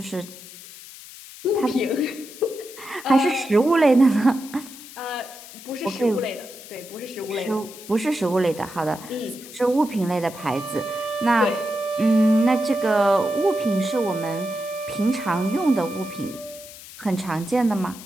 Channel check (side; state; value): left; noise; hiss, 16 dB below the sound